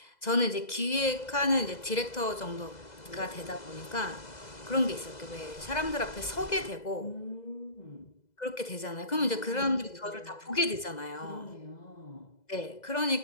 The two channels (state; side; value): late; right; 2.0 ms